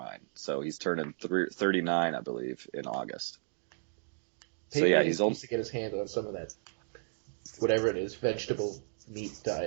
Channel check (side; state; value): left; silent; digital silence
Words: So he's turning 39, I believe, in August. Peyton Manning needs to get his hand on some of that, whatever it is, vegetable meat